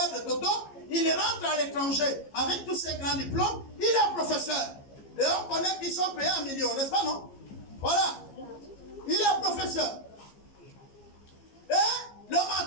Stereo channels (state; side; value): late; right; 15 ms